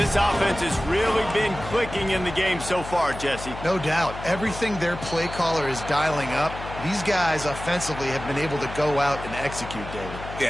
offense has really been clicking in the game so far, Jesse. No doubt. Everything their play caller is dialing up, these guys offensively have been able to go out and execute, David.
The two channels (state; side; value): noise; left; hum, 11 dB below the sound